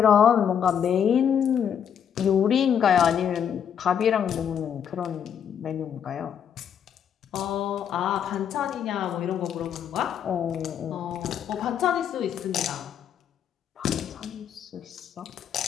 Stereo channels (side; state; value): right; quieter; 8.5 dB